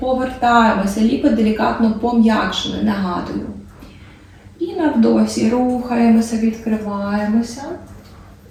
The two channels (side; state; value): both; identical; correlation 1.00